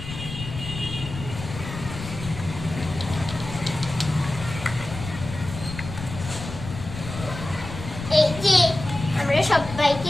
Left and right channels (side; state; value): left; noise; rumble, 10 dB below the sound